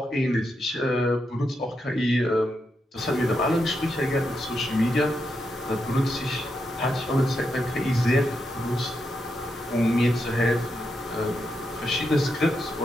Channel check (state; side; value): normal; both; correlation 0.84